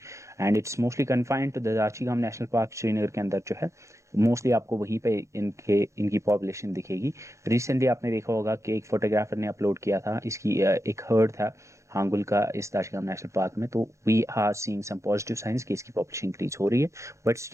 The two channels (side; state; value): left; late; 0.14 ms